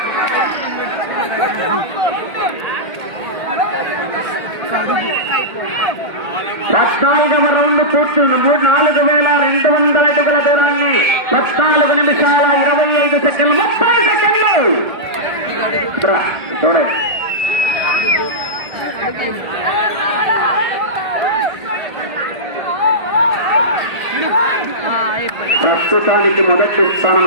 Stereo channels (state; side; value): late; left; 1.4 ms